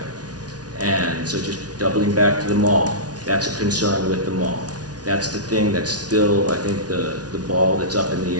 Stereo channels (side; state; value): left; late; 0.69 ms